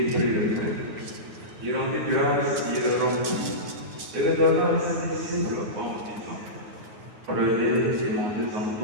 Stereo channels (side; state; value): left; late; 9.6 ms